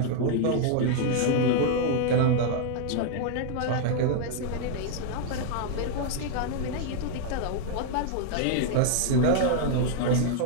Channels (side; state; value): both; different; correlation 0.00